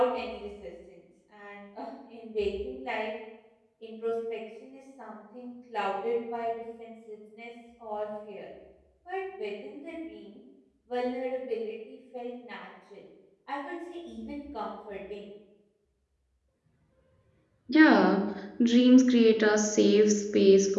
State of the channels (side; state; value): both; identical; correlation 1.00